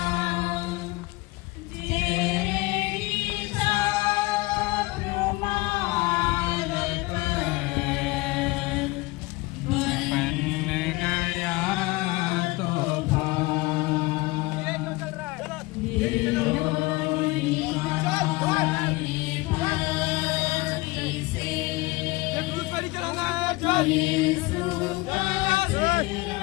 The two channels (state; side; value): quieter; right; 22.3 dB